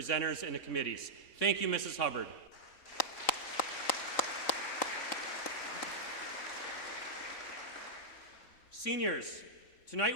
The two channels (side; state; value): right; late; 3.9 ms